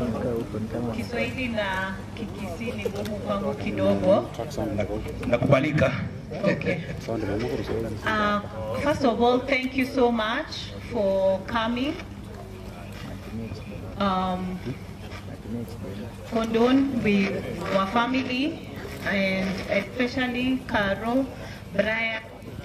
Kiswahili na Kikisii ni ngumu kwangu kidogo. Nakubalika. Okay. First of all, thank you so much for coming. Condone with our family and especially Carol, Brian,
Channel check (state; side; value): identical; both; correlation 1.00